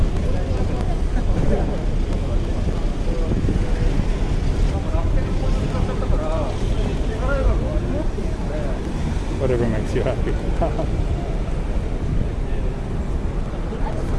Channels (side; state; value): both; identical; correlation 1.00